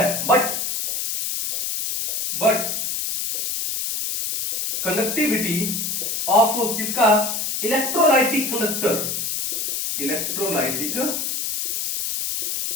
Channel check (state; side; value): noise; left; hiss, 2 dB below the sound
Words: बट कंडक्टिविटी ऑफ किसका, इलेक्ट्रोलाइटिक कंडक्टर, इलेक्ट्रोलाइटिक